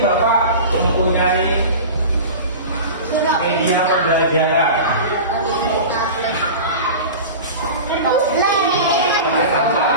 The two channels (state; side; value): inverted; both; correlation -0.32